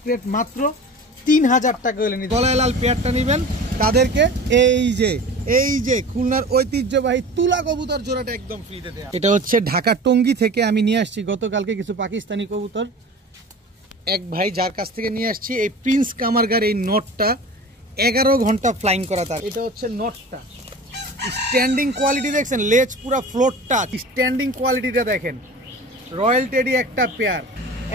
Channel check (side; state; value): both; normal; correlation 0.37